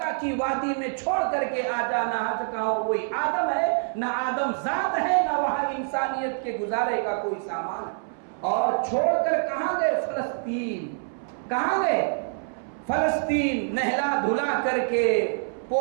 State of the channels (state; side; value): silent; left; 61 dB below the other